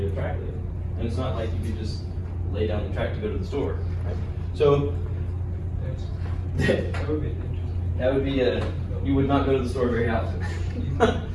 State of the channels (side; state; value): both; identical; correlation 1.00